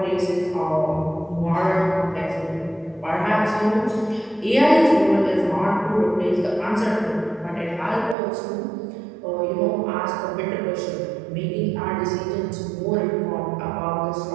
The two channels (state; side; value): drops out; left; at 8.2 s